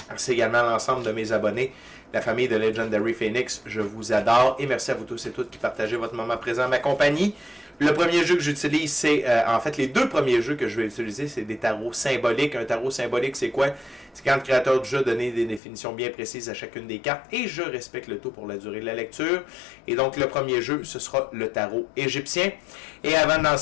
Merci également à l'ensemble de mes abonnés. La famille de Legendary Phoenix, je vous adore. Et merci à vous tous et toutes qui partagez votre moment présent à ma compagnie. Le premier jeu que j'utilise, c'est... en fait, les deux premiers jeux que je vais utiliser, c'est des tarots symboliques. Un tarot symbolique, c'est quoi? C'est quand le créateur du jeu a donné des définitions bien précises à chacune des cartes. Et je respecte le tout pour la durée de la lecture. Et donc, le premier jeu, ce sera le tarot égyptien. Et avant de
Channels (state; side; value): drops out; right; at 15.6 s